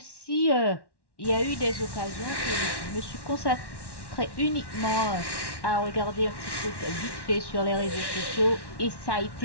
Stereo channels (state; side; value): late; right; 1.1 ms